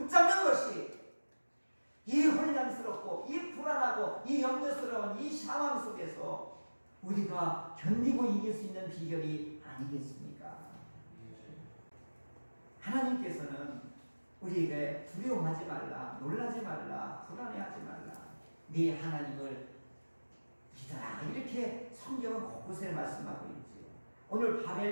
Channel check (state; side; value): inverted; both; correlation -1.00